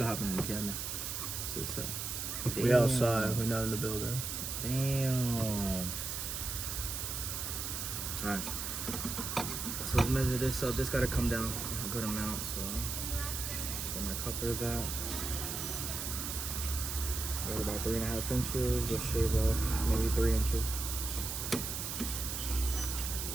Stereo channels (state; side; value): noise; right; hiss, 4 dB below the sound